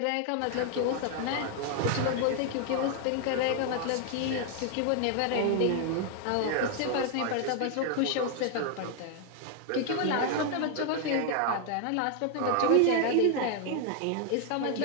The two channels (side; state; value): both; different; correlation 0.00